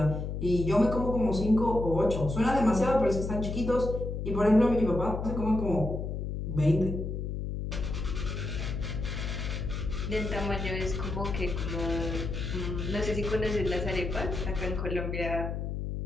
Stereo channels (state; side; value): noise; left; hum, 4 dB below the sound